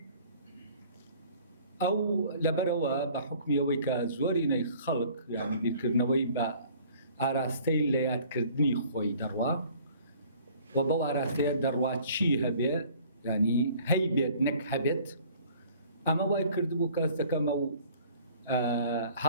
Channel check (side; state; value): both; inverted; correlation -0.53